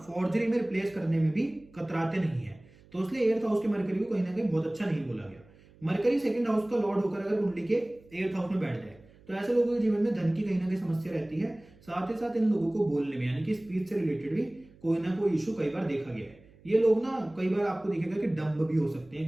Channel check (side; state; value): right; noise; hum, 26 dB below the sound